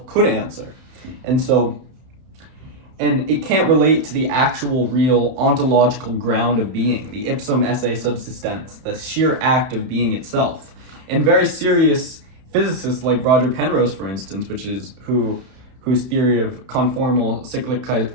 could answer. And it can't relate to the actual, real, ontological ground of being, the ipsum esse subsistens, the sheer act of being itself. And very serious physicists like Roger Penrose, for instance, whose theory of conformal cyclic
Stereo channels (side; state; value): left; late; 31 ms